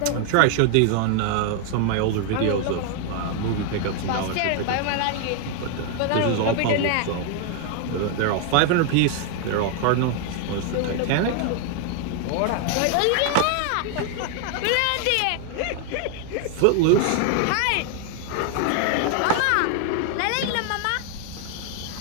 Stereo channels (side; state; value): both; different; correlation 0.00